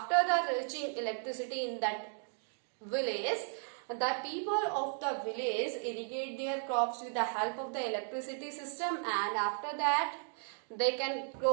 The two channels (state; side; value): silent; left; 54 dB below the other